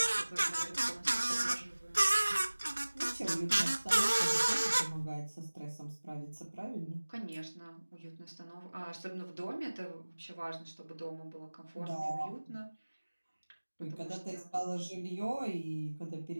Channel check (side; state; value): both; inverted; correlation -1.00